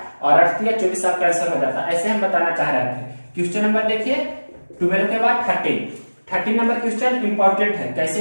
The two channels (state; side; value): inverted; both; correlation -1.00